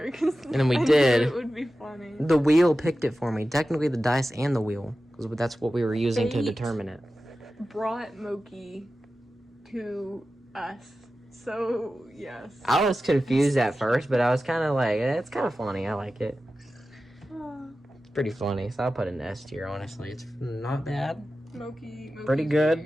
And then we I did. knew it would be funny. The wheel picked it for me. Technically, the dice and the wheel, because that's what we were using to Fate determine it. Brought Mokey to us. So, yes. I was confused at first, but I was kind of like, it's kind of funny. I like it. It's pretty funny, so I'll put an S tier, honestly. It's not bad. Mokey's Pretty good.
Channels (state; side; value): normal; both; correlation 0.94